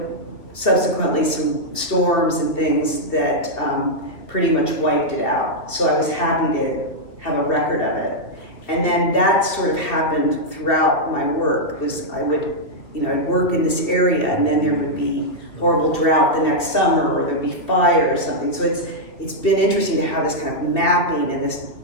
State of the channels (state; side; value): late; right; 2.7 ms